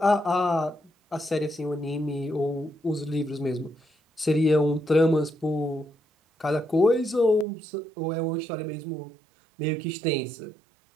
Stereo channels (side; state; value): left; drops out; at 7.5 s